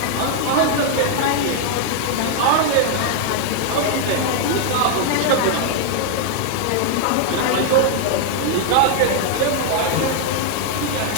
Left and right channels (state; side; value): different; both; correlation 0.00